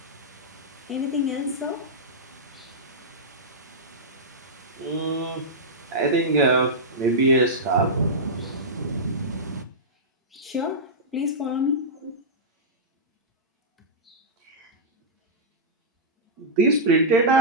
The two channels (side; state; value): both; normal; correlation -0.12